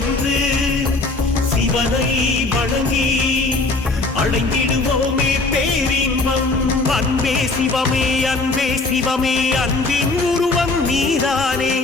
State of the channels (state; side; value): quieter; right; 3.4 dB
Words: சிவனை வணங்கி அடைந்திடுவோமே பேரின்பம். அன்பே சிவமே அன்பே சிவமே அன்பின் உருவம் நீதானே.